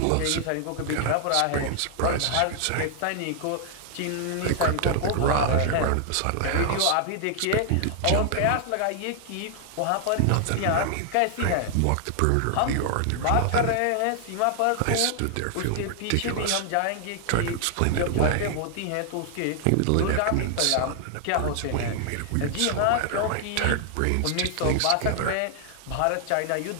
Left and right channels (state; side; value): different; both; correlation 0.00